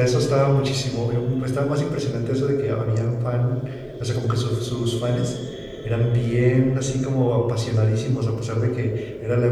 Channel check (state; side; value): identical; both; correlation 1.00